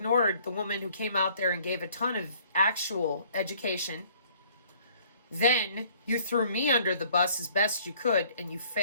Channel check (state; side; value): inverted; both; correlation -0.58